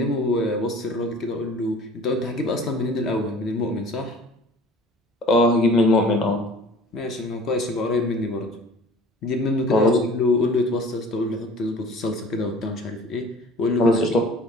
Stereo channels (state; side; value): normal; both; correlation 0.46